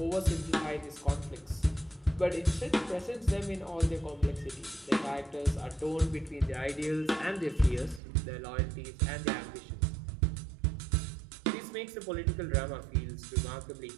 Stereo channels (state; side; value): drops out; left; at 8.0 s